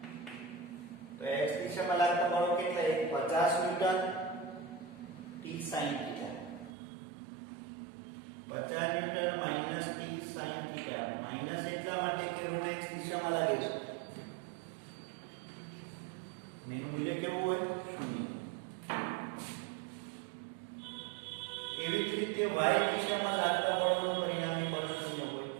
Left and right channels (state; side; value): drops out; left; at 6.7 s